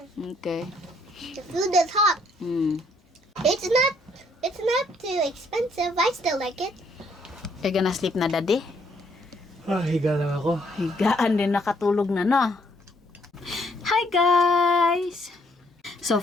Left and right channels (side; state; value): both; normal; correlation 0.68